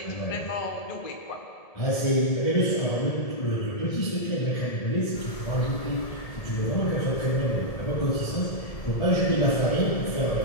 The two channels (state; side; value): late; right; 1.7 ms